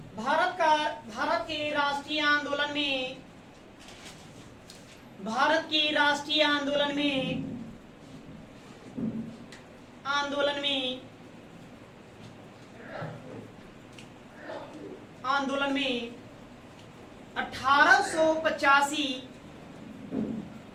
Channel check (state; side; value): identical; both; correlation 1.00